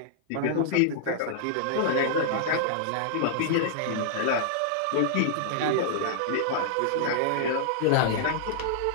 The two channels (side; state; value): both; different; correlation -0.01